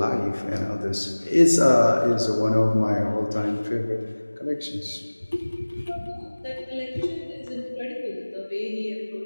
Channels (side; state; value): both; inverted; correlation -1.00